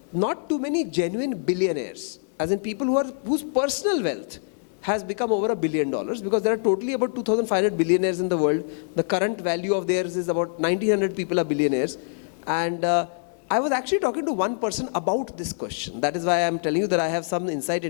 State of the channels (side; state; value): right; silent; 62 dB below the other